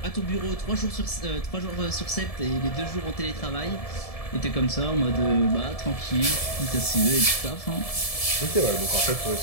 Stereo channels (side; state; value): right; late; 1.7 ms